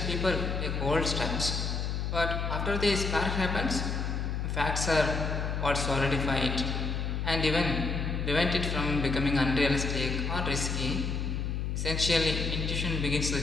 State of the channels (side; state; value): left; noise; hum, 1 dB below the sound